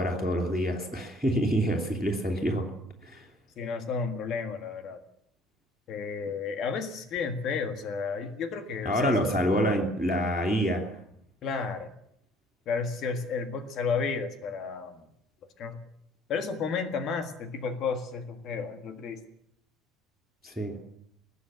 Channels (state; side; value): normal; both; correlation 0.56